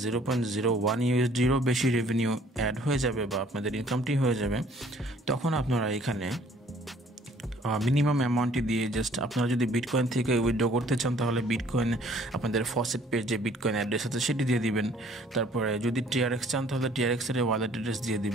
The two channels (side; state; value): both; normal; correlation 0.58